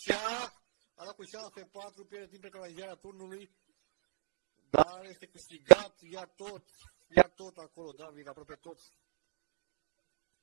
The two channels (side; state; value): left; silent; digital silence